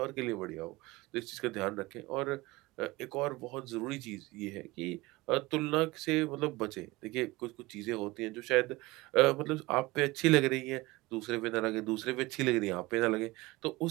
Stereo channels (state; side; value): quieter; left; 21.2 dB